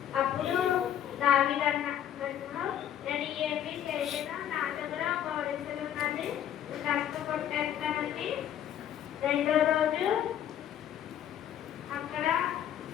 అప్పుడు దావీదు అన్నాడు, నేను ఏమి చేయను, నా దగ్గర ఒక ఒడిసెలు ఉన్నది, కష్టపట్టేస్తానని. రెండో రోజు అక్కడ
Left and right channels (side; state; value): right; quieter; 10.4 dB